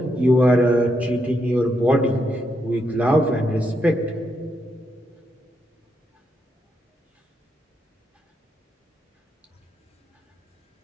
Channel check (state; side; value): normal; both; correlation 0.80